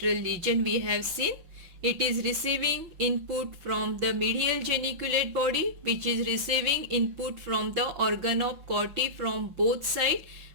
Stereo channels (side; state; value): left; late; 5.8 ms